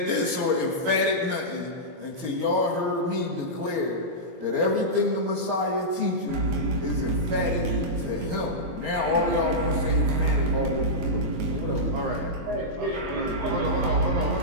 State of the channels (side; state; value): left; late; 23 ms